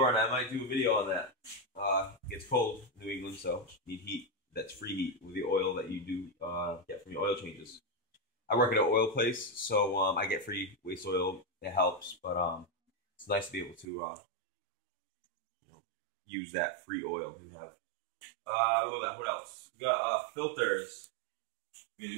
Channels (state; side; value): drops out; left; at 13.9 s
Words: I might do a video on that. It gets cold in New England, so you need heat. That's free heat with the oil that you do get from your oil changes. I work at an oil place, so I get free waste oil. It helps, but it's nice to be able to use that free oil you have. Look at that. What else? We got filters. You